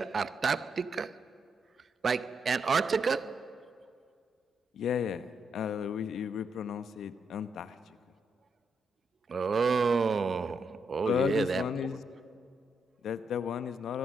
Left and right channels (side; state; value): both; normal; correlation 0.79